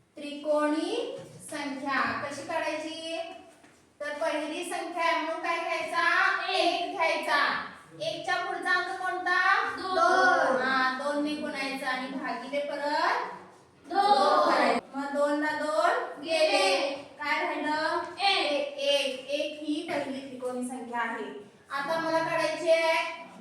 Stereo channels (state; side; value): identical; both; correlation 1.00